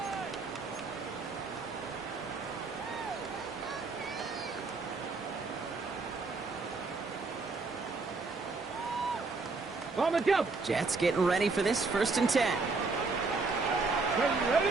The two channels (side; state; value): left; quieter; 4.0 dB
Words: On the jump. Jets getting ready for this 1st and 10.